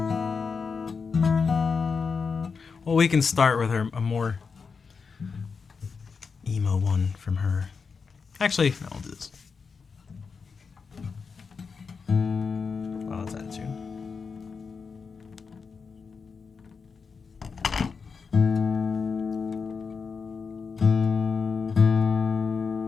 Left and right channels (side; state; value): right; quieter; 5.3 dB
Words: Well, we can start with a more emo one from her. Actually, no, I'll do this. Oh, that's out of tune.